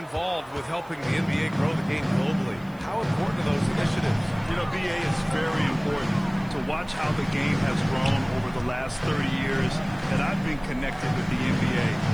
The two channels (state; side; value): noise; right; hiss, 28 dB below the sound